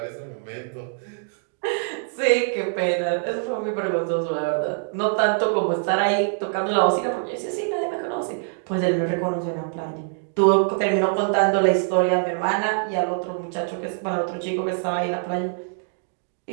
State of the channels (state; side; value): silent; left; digital silence